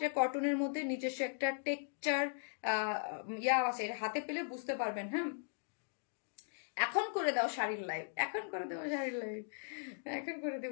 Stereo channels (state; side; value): silent; right; digital silence